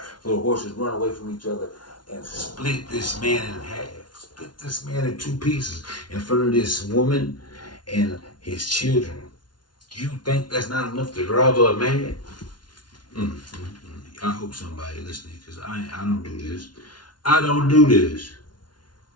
so the horses run away from each other and split this man in half. Split this man in 2 pieces in front of this woman and his children. You think that's not enough to drive her mad? I hope somebody listening, because I don't do this. I don't do this.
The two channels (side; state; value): right; late; 0.70 ms